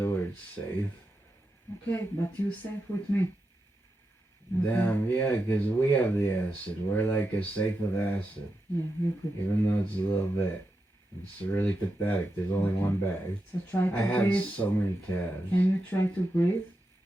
word safe. Okay, but you safe with me. Okay. Damn, yeah, because we have the acid. We're like a safe of acid. Yeah, you could. Even though it's a little bit. It's really pathetic. There's only one bag. So try to I have breathe. so many tabs. Can you try to breathe?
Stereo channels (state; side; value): normal; both; correlation 0.88